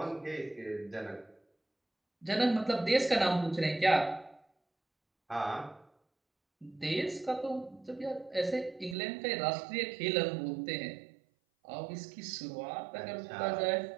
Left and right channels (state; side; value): drops out; left; at 9.0 s